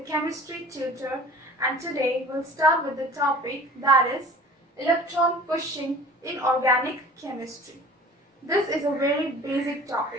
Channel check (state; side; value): normal; both; correlation 0.44